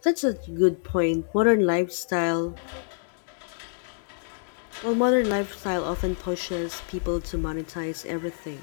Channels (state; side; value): silent; right; digital silence